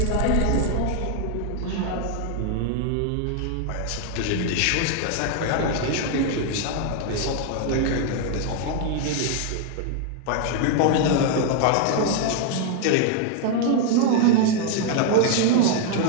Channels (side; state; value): both; different; correlation 0.00